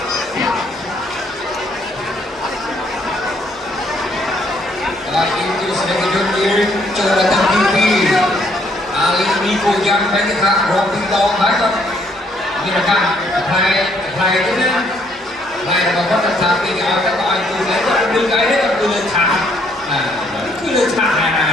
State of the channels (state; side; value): normal; both; correlation 0.68